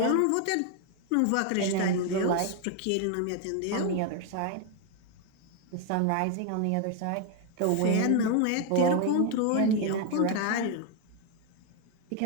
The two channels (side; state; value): both; different; correlation 0.01